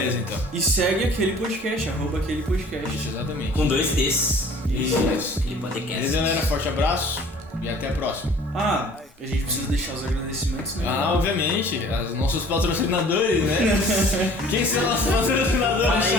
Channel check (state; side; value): normal; both; correlation 0.50